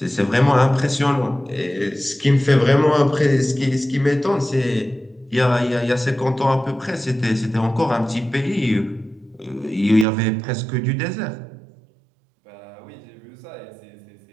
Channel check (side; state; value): left; drops out; at 10.1 s